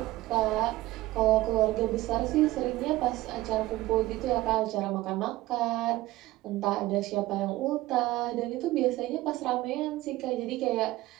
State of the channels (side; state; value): left; quieter; 17.5 dB